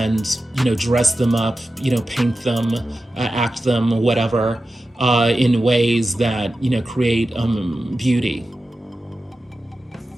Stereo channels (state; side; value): normal; both; correlation 0.92